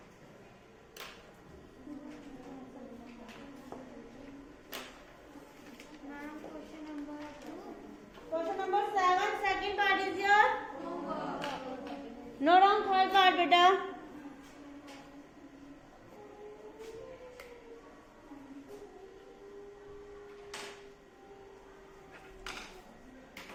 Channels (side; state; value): both; identical; correlation 1.00